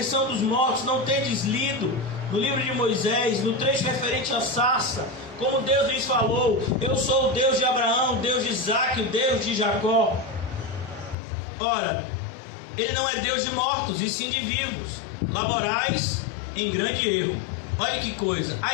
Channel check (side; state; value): right; drops out; at 11.2 s